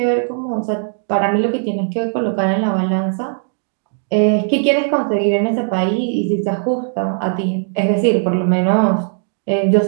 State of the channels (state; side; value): silent; left; 63 dB below the other